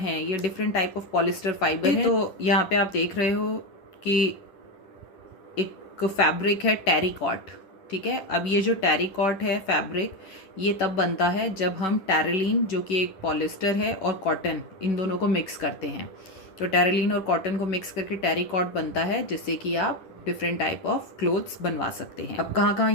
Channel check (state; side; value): late; right; 10 ms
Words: ये different type of polyester fibre है। तो यहाँ पे आप देख रहे हो कि एक फैब्रिक है टेरिकॉट, ठीक है। अब ये जो टेरिकॉट है फैब्रिक, ये तब बनता है जब हम टेरेलिन, जो कि एक पॉलिस्टर है, और कॉटन, इन दोनों को मिक्स करते हैं। तो टेरेलिन और कॉटन को मिक्स करके टेरिकॉट बनता है, जिससे कि आप डिफरेंट टाइप ऑफ क्लोथ्स बनवा सकते हैं। अब कहाँ कहाँ